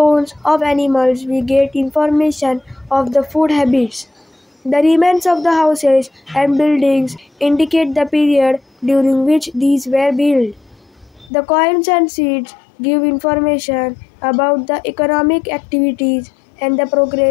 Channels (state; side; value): drops out; right; at 11.3 s